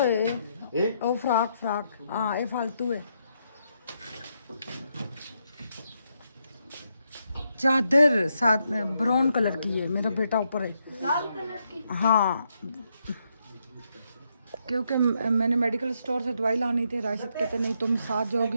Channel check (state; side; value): inverted; both; correlation -0.78